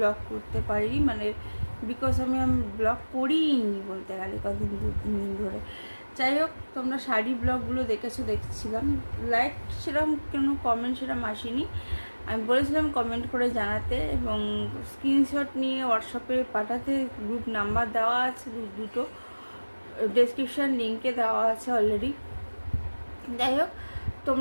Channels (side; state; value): both; inverted; correlation -1.00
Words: করতে পারিনি, মানে বিকজ আমি ব্লগ করিনি বলতে গেলে কদিন 2-3 দিন ধরে। যাই হোক, তোমরা শাড়ি ব্লগগুলো দেখেছো, দেখছিলাম। লাইক সেরকম কোনো কমেন্ট সেরকম আসেনি। আমি বলেছিলাম কমেন্ট করে জানাতে এবং স্ক্রিনশট নিয়ে হোয়াটসঅ্যাপে পাঠাতে। গ্রুপ নাম্বার দেওয়া আছে দুটো, ডেসক্রিপশান লিঙ্কে দেওয়া আছে অলরেডি। যাই হোক,